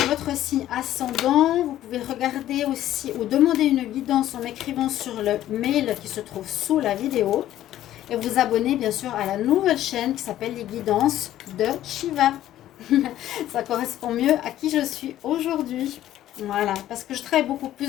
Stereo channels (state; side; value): quieter; right; 13.0 dB